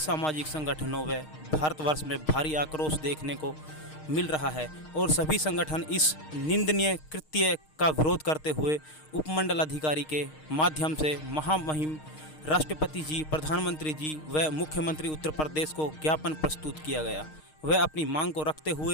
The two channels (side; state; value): right; late; 6.5 ms